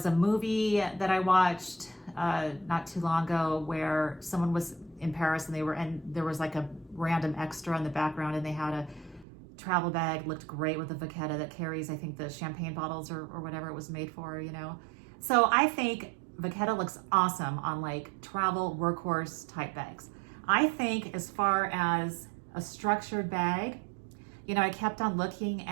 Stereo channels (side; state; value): left; drops out; at 9.2 s